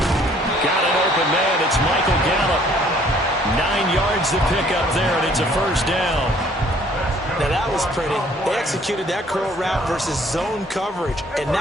Got an open man. It's Michael Gallup. 9 yards to pick up there, and it's a first down. Now, that was pretty. They executed that curl route versus zone coverage, and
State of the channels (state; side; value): normal; both; correlation 0.59